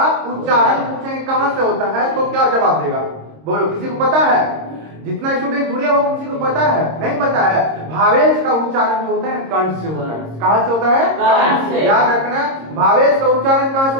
उच्चारण पूछेंगे कहां से होता है तो क्या जवाब देगा? बोलो किसी को पता है? जितना स्टूडेंट जुड़े हो किसी को पता है? नहीं पता है। भावेल्स का उच्चारण जो होता है कंठ से होता है। कहां से होता है? कंठ से। याद रखना भावेल्स का उच्चारण कहां से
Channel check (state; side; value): late; left; 26 ms